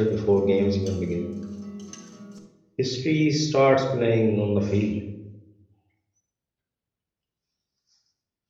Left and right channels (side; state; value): both; identical; correlation 1.00